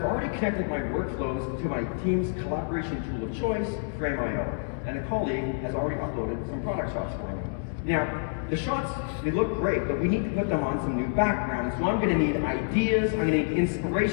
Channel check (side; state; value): right; silent; digital silence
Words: already connected my workflows to my team's collaboration tool of choice, Frame.io, and a colleague has already uploaded some product shots for me. Now, the shots, they look great, but we need to put them on some new backgrounds. So I'm going to need ideas, I'm going to need